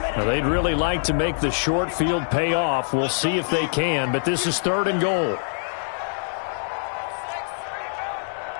Now, they'd really like to make the short field pay off. We'll see if they can, but this is 3rd and goal.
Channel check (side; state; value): right; silent; digital silence